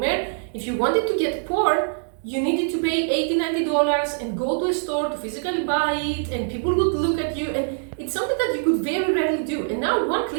if you wanted to get porn, you needed to pay $80, $90 and go to a store to physically buy it, and people would look at you, and it's something that you could very rarely do. And now one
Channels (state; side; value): silent; left; digital silence